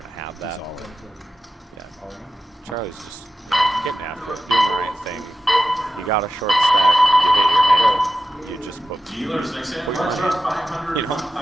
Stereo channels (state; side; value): normal; both; correlation 0.92